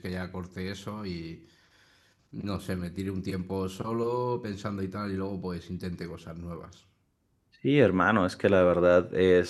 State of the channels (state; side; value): identical; both; correlation 1.00